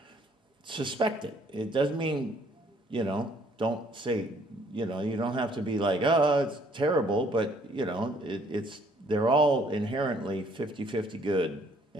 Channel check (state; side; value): normal; both; correlation 0.62